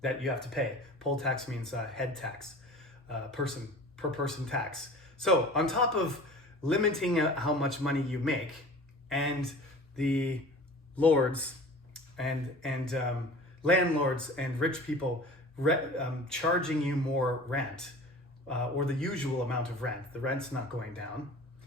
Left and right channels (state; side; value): normal; both; correlation 0.41